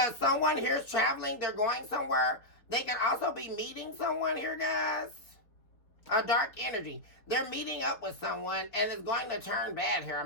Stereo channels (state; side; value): late; right; 4.2 ms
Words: someone here is traveling, they're going somewhere. They can also be meeting someone here, guys. A dark energy. They're meeting up with someone, and it's going to turn bad here.